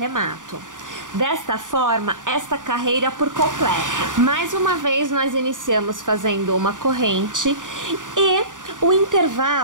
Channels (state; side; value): late; left; 0.88 ms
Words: Desta forma, esta carreira por completo. Mais uma vez, nós iniciamos fazendo uma corrente e o